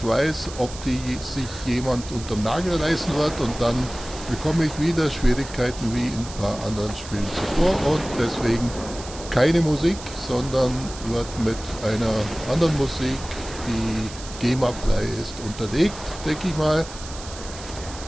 weiß, ob die sich jemand unterm Nagel reißen wird und dann bekomme ich wieder Schwierigkeiten wie in ein paar anderen Spielen zuvor und deswegen keine Musik, sondern wird mit einer anderen Musik, die GEMA-frei ist, unterlegt, denke ich mal.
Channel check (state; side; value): noise; right; hiss, 14 dB below the sound